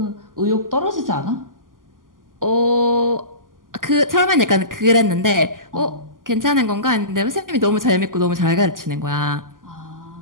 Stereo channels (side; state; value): left; late; 0.90 ms